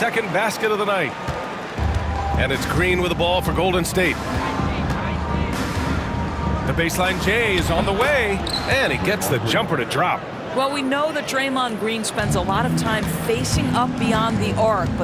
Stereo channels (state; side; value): identical; both; correlation 1.00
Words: basket of the night. And it's Green with the ball for Golden State. The baseline J is on the way, and he gets the jumper to drop. Well, we know that Draymond Green spends a lot of time facing up beyond the arc,